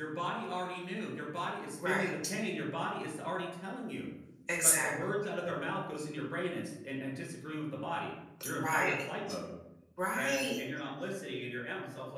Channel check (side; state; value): both; identical; correlation 1.00